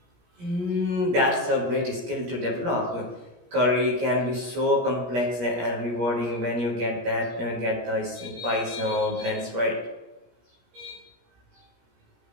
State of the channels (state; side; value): late; left; 17 ms